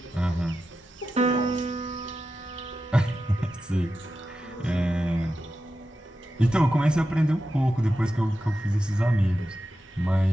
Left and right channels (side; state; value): both; normal; correlation 0.91